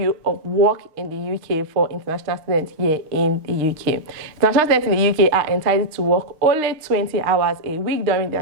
of work in the UK for international students here in the UK. International students in the UK are entitled to work only 20 hours a week during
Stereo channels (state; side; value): late; left; 6.5 ms